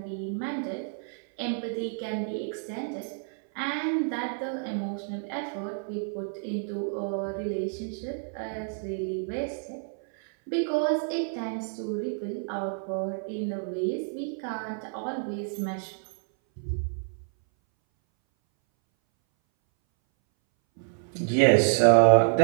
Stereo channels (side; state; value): left; silent; 59 dB below the other